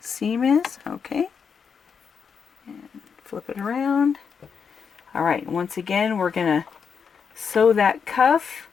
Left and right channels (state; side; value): quieter; right; 6.4 dB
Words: is. Okay. And flip it around. All right, once again, we're going to sew that cuff